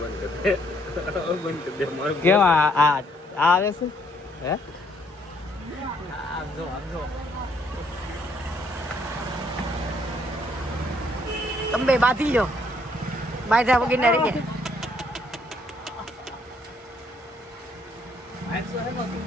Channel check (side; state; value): both; normal; correlation 0.68